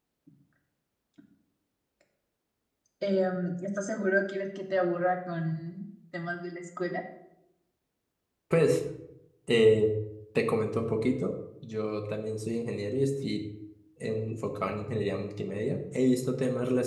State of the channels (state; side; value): identical; both; correlation 1.00